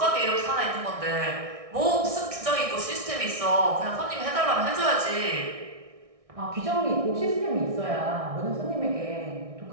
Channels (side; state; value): left; late; 1.6 ms